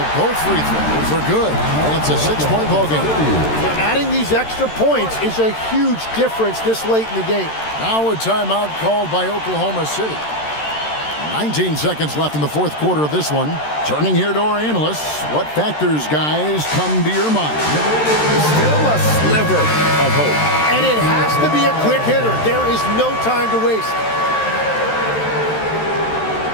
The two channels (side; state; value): right; late; 13 ms